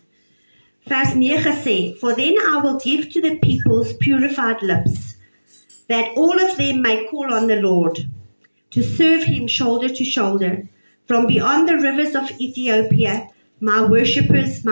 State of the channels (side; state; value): both; inverted; correlation -1.00